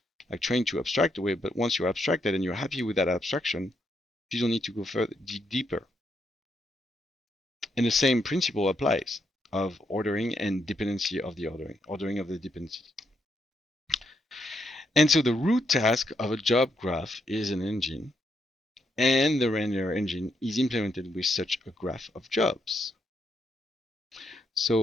like trained to abstract away. But once you're abstracted and you're happy with that abstraction, you don't need to go further deeper. And the same principle applies of ordering and dependency of the ordering of the dependencies. And so the root task of a job graph is an engine, and the render engine is implemented with such a graph of jobs.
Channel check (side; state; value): both; normal; correlation 0.78